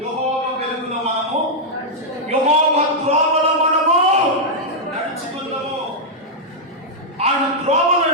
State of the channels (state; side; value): normal; both; correlation -0.05